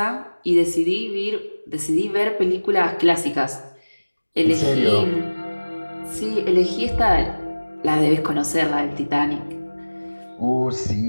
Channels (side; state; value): both; inverted; correlation -1.00